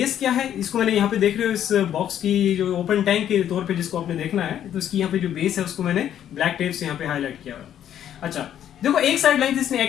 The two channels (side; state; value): right; quieter; 10.4 dB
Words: क्या है, इसको मैंने यहाँ पे देख रहे हो इस बॉक्स की जो ओपन टैंक के तौर पे जिसको आपने देखना है, तो इसकी यहाँ पे जो बेस है उसको मैंने ब्लैक टेप से यहाँ पे हाईलाइट किया हुआ है। अच्छा, देखो एक साइड लेंथ इसने